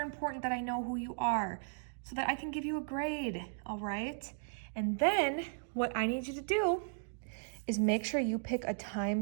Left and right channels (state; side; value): silent; left; digital silence